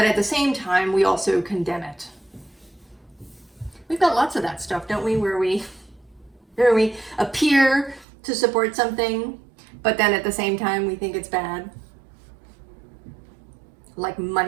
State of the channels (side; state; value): left; drops out; at 8.1 s